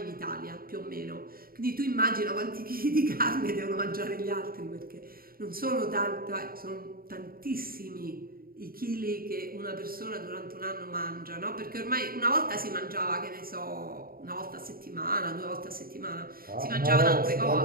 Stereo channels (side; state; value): left; late; 0.43 ms